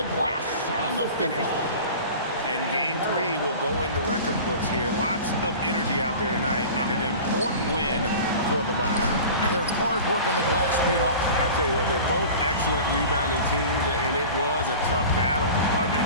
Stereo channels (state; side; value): inverted; both; correlation -0.38